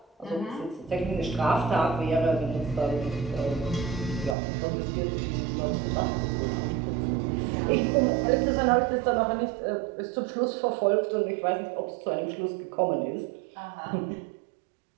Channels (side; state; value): left; drops out; at 4.4 s